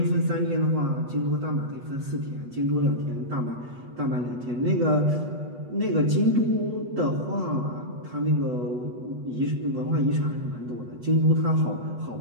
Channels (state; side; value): late; left; 8.2 ms